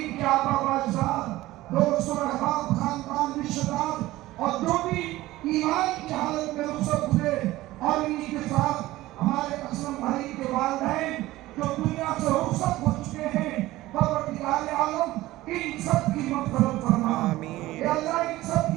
کے آبا و اجداد دوست و احباب خاندان رشتہ دار اور جو بھی ایمان کی حالت میں رخصت ہوئے اور انہی کے ساتھ ہمارے اسلم بھائی کے والدین جو دنیا سے رخصت ہو چکے ہیں پروردگار عالم ان سب کی مغفرت فرما اے اللہ ان سب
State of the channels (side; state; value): left; quieter; 17.2 dB